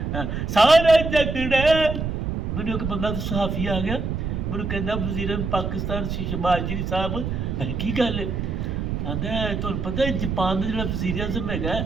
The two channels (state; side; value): noise; right; rumble, 3 dB below the sound